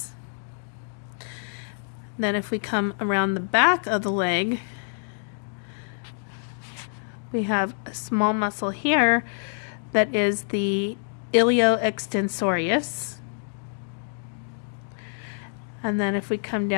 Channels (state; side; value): silent; right; digital silence